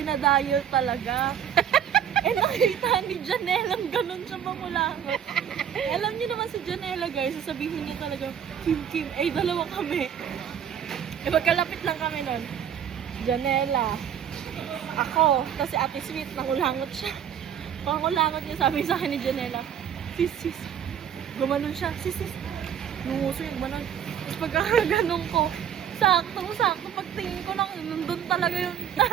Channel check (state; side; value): quieter; left; 9.0 dB